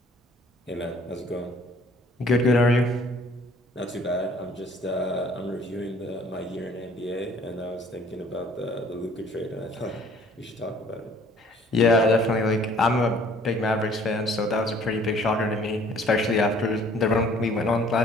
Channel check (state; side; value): normal; both; correlation 0.56